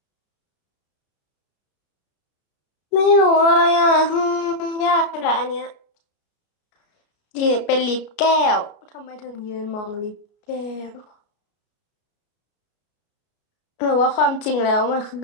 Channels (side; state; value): right; late; 33 ms